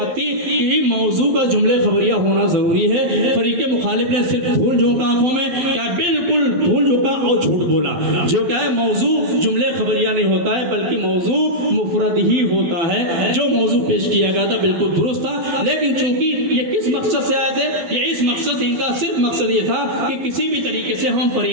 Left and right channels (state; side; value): late; left; 12 ms